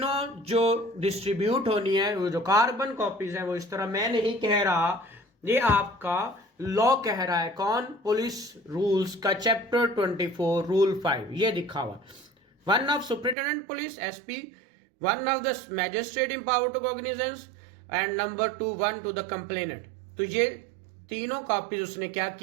जो डिस्ट्रीब्यूट होनी है, वो जो कार्बन कॉपीज है, वो इस तरह मैं नहीं कह रहा, ये आपका लॉ कह रहा है। कौन? पुलिस रूल्स का चैप्टर 24 रूल 5 ये दिखा हुआ। 1 of superintendent police SP, 1 of the magistrate empowered to cognizance and number 2 1 to the complainant. तो ये तीनों कॉपीज उसने क्या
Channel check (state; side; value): drops out; left; at 13.4 s